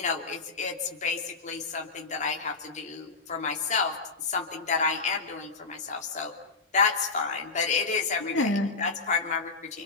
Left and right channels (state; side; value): quieter; right; 4.2 dB